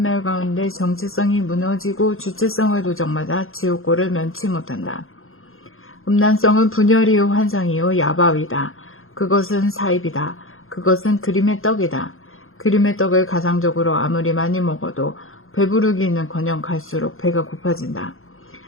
가운데 정체성이 무너지고 주체성을 도적맞아 지옥고를 면치 못한다. 음란성은 분열이요 환상이요 야바위다. 그것은 사입이다. 그것은 그림의 떡이다. 그림의 떡을 가상적으로 아무리 많이 먹어도 배부르기는커녕 갈수록 배가 고파진다.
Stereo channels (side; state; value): right; late; 0.61 ms